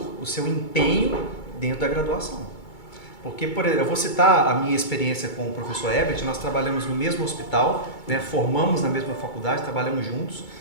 o seu empenho dentro da graduação. Porque, por exemplo, eu vou citar a minha experiência com o professor Herbert, nós trabalhamos no mesmo hospital, né, formamos na mesma faculdade, trabalhamos juntos,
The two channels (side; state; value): right; late; 2.3 ms